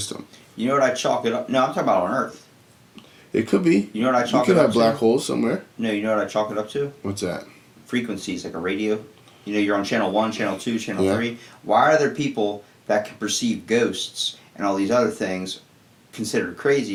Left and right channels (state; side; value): identical; both; correlation 1.00